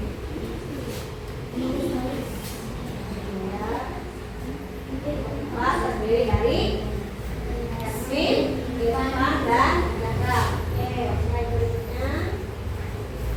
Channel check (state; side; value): identical; both; correlation 1.00